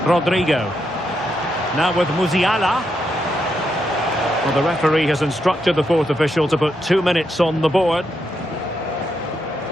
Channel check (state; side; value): noise; left; hum, 25 dB below the sound